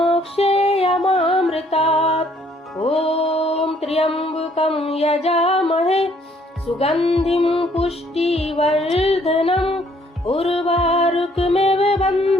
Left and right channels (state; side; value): normal; both; correlation 0.63